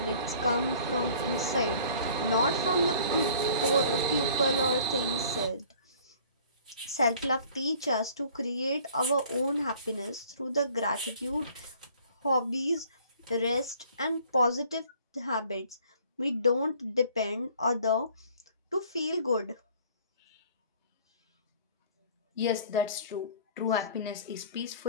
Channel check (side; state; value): both; inverted; correlation -0.53